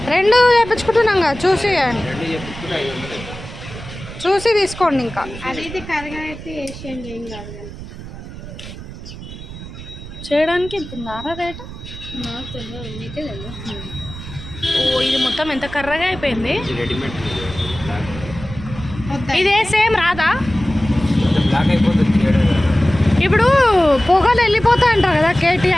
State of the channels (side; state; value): right; noise; rumble, 12 dB below the sound